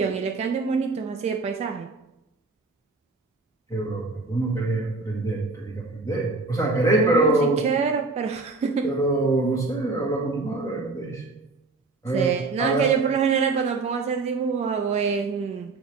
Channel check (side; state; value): left; quieter; 3.7 dB